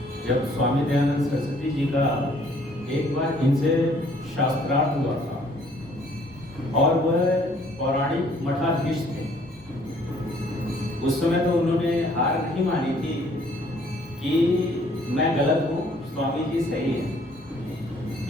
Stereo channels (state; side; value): normal; both; correlation 0.60